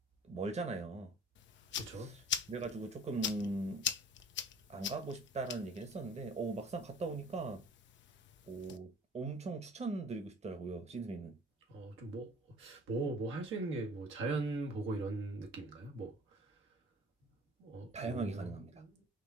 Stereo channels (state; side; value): normal; both; correlation 0.48